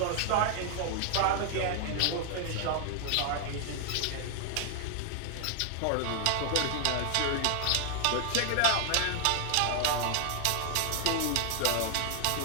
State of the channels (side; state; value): both; different; correlation 0.00